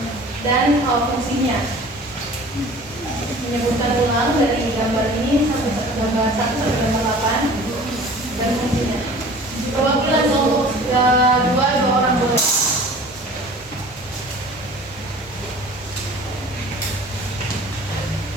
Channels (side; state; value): both; normal; correlation 0.45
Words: dan fungsinya. Menyebutkan ulang dari gambar ini sampai gambar 1 sampai gambar 8 dan fungsinya. Perwakilan kelompok 2 orang boleh.